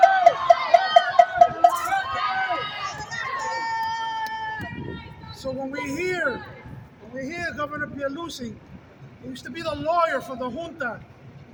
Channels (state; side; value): identical; both; correlation 1.00